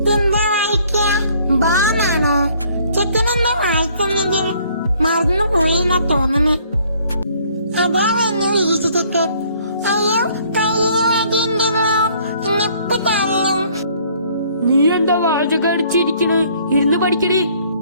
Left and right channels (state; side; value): inverted; both; correlation -0.61